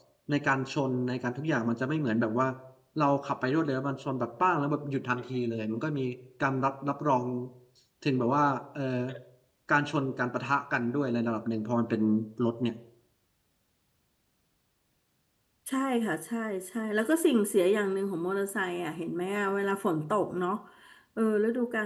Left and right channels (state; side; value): identical; both; correlation 1.00